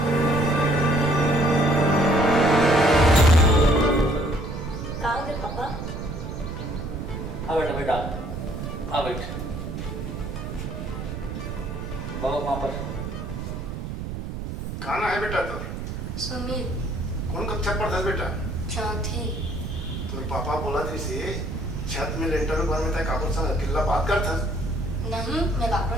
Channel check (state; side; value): noise; right; rumble, 6 dB below the sound